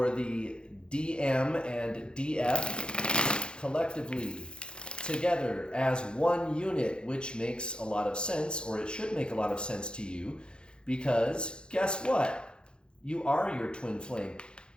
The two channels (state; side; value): late; right; 0.051 ms